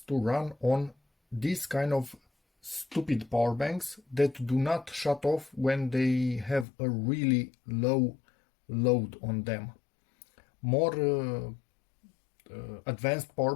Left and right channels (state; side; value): drops out; right; at 6.7 s